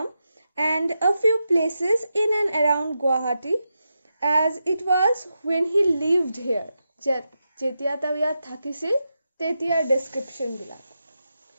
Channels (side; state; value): both; inverted; correlation -0.88